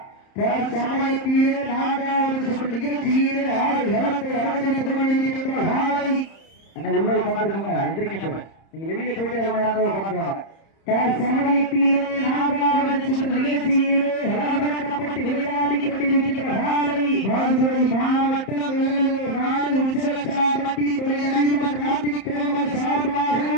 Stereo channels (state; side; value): late; right; 31 ms